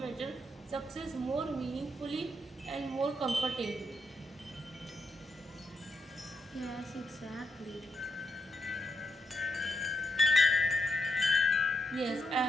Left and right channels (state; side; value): normal; both; correlation 0.78